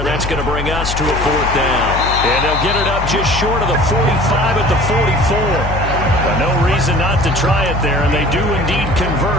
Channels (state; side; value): noise; left; hum, 5 dB below the sound